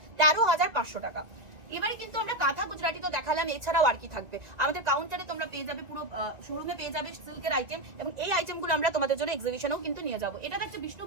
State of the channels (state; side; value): late; left; 1.9 ms